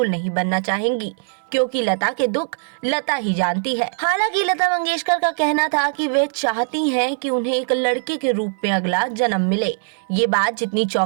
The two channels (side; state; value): left; silent; digital silence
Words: नहीं बनना चाहेंगी, क्योंकि लता के दुख लता ही जानती है। हालांकि लता मंगेशकर का कहना था कि वे चाहती हैं कि उन्हें एक लड़के के रूप में अगला जन्म मिले। ये बात जितनी